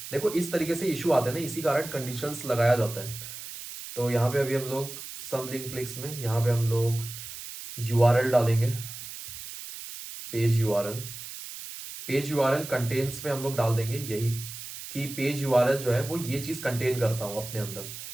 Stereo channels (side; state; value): right; noise; hiss, 11 dB below the sound